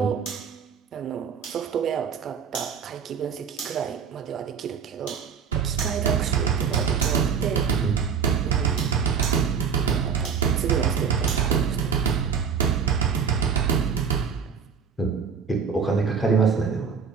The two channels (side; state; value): left; quieter; 6.4 dB